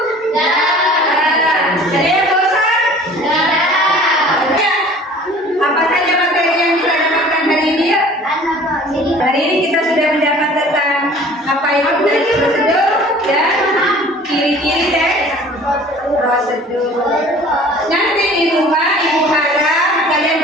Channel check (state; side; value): normal; both; correlation 0.47